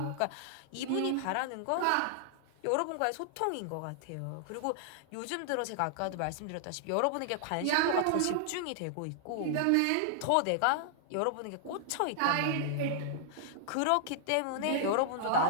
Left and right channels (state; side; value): different; both; correlation -0.01